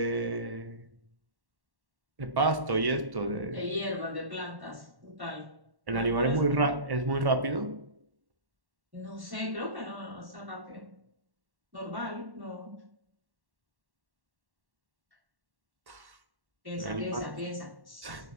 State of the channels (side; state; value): left; late; 1.1 ms